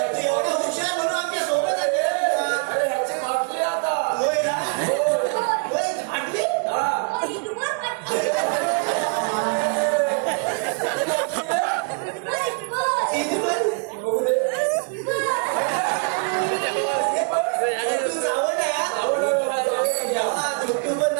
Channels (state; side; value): quieter; left; 38.8 dB